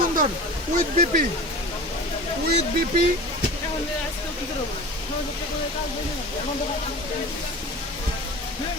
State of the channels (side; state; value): both; normal; correlation 0.35